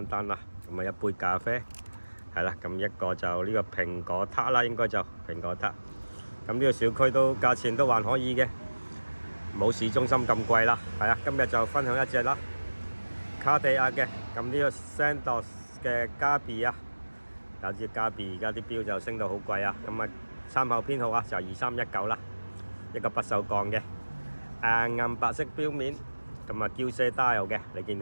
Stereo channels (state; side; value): inverted; both; correlation -1.00